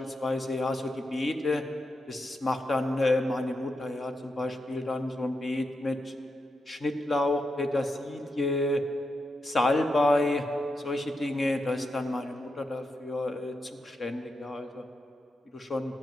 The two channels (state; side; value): normal; both; correlation 0.86